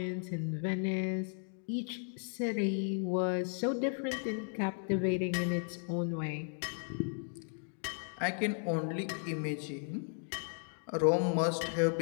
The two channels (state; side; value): silent; right; 54 dB below the other